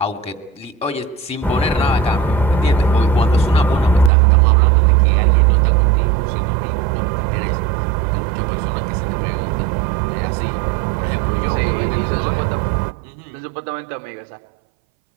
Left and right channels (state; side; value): drops out; left; at 4.1 s